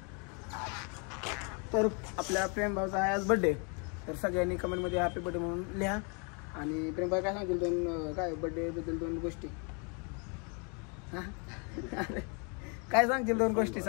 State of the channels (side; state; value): right; quieter; 35.5 dB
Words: तर आपल्या प्रेमभाऊचा आहे आज बड्डे. तर सगळ्यांनी कमेंटमध्ये हॅपी बड्डे म्हणून लिहा. आणि प्रेमभाई काय सांगतील दोन काय बड्डेबद्दल दोन गोष्टी? हां काय सांगतील दोन गोष्टी?